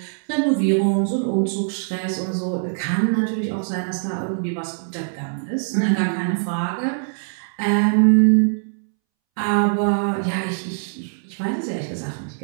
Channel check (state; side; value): silent; left; 64 dB below the other